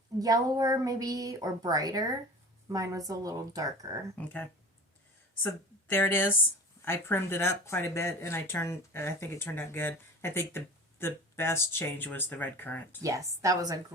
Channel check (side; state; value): both; normal; correlation 0.38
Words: yellower maybe, or brighter. Mine was a little darker. Okay. So there it is. I primmed it up quite a bit, and I think it turned out good. I think the the best change was the red currant. Yes, that was a